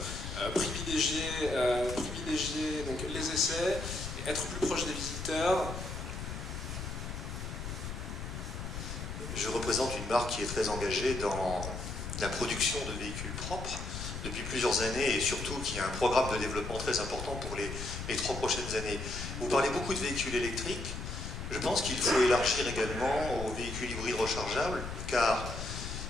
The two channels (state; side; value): noise; left; rumble, 6 dB below the sound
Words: privilégier donc les essais, être plus proche des visiteurs. Je représente une marque qui est très engagée dans la production de véhicules propres depuis plusieurs années et surtout qui a un programme de développement très important pour les 3 prochaines années. Vous parlez beaucoup de véhicules électriques. Je pense qu'il faut élargir également aux véhicules hybrides rechargeables car